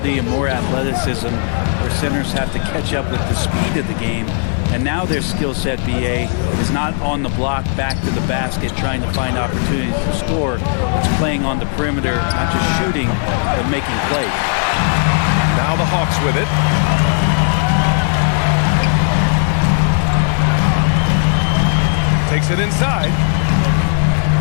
and more athleticism, where centers have to catch up with the speed of the game. And now their skill set, BA, is not on the block back to the basket trying to find opportunities to score. It's playing on the perimeter, not just shooting, but making plays. Now the Hawks with it. Takes it inside.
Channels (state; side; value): silent; right; 61 dB below the other